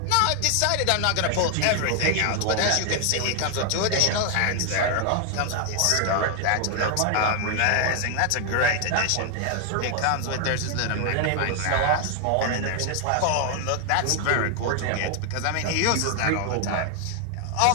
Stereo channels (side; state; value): both; different; correlation 0.00